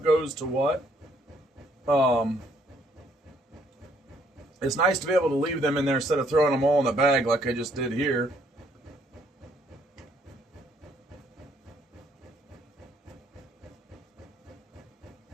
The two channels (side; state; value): both; normal; correlation 0.67